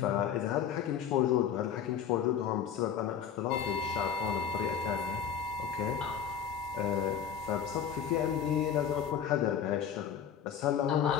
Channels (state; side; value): quieter; right; 8.2 dB